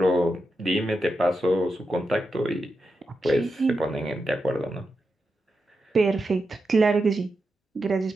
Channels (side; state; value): both; normal; correlation 0.88